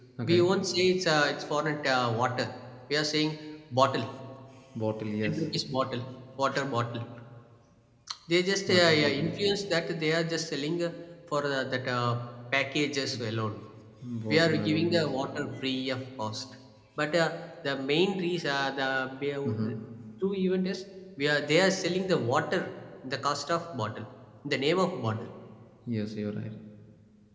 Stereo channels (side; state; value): both; identical; correlation 1.00